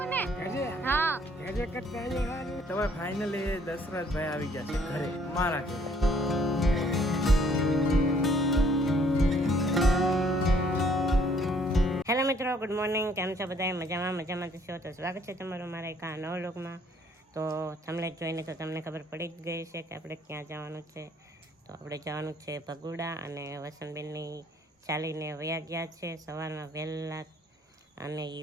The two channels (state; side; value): normal; both; correlation 0.63